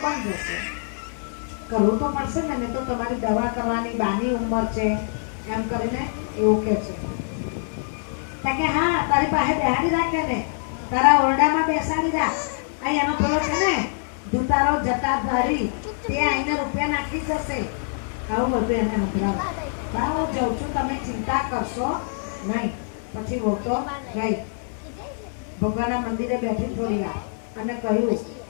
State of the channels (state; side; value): silent; right; 62 dB below the other